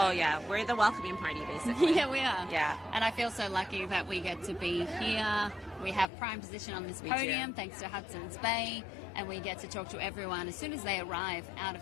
yeah, we're the welcoming party, basically. Yeah, we are. Yeah. And I feel so lucky that we get to be here. We have prime position on this We podium do. thanks to Hudson's Bay, and we get to talk to everyone as soon as they arrive out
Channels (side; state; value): right; drops out; at 6.1 s